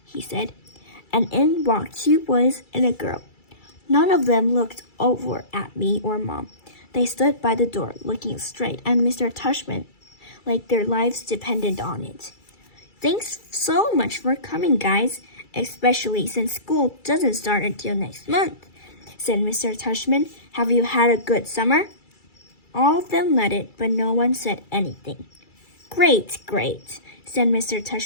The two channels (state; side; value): late; right; 2.3 ms